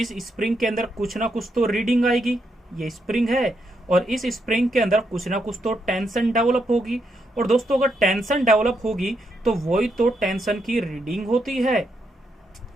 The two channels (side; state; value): both; normal; correlation 0.79